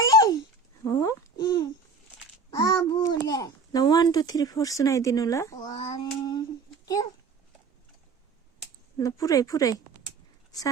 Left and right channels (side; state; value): left; quieter; 4.2 dB